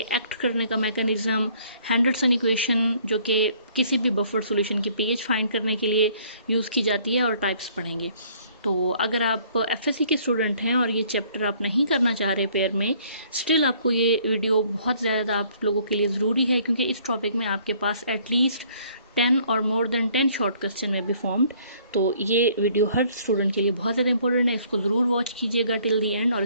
एक्ट करने का मैकेनिज्म, हेंडरसन इक्वेशन जो कि किसी भी बफर सॉल्यूशन की पीएच फाइंड करने के लिए यूज़ की जाती है, और टाइप्स पढ़ेंगे। तो अगर आप एफएससी के स्टूडेंट हैं और ये चैप्टर आप नहीं करना चाह रहे पेयर में, स्टिल आपको ये वीडियो बहुत ज़्यादा आप लोगों के लिए ज़रूरी है, क्योंकि इस टॉपिक में आपके पास एटलीस्ट 10 और मोर देन 10 शॉर्ट क्वेश्चन में बी फॉर्म्ड। तो ये वीडियो हर स्टूडेंट के लिए बहुत ज़्यादा इंपॉर्टेंट है। इसको ज़रूर वॉच कीजिएगा टिल दी एंड, और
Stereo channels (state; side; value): inverted; both; correlation -0.60